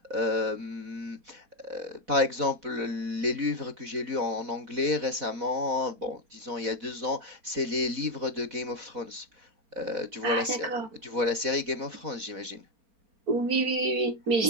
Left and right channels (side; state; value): left; late; 4.1 ms